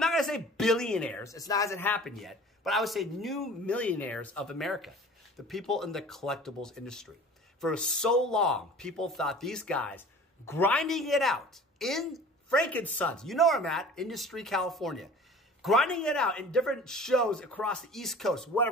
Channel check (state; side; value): normal; both; correlation 0.44